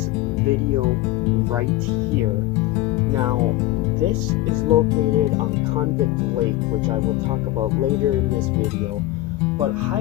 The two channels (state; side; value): quieter; right; 16.6 dB